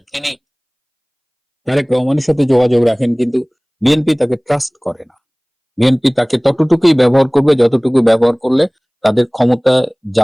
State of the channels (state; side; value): identical; both; correlation 1.00